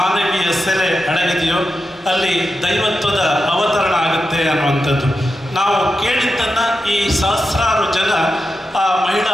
ಸೆಲೆ ಅಡಗಿದೆಯೋ ಅಲ್ಲಿ ದೈವತ್ವದ ಅವತರಣ ಆಗುತ್ತೆ ಅನ್ನುವಂಥದ್ದು. ನಾವು ಕೇಳಿದ್ದನ್ನು ಈ ಸಹಸ್ರಾರು ಜನ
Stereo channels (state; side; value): normal; both; correlation 0.89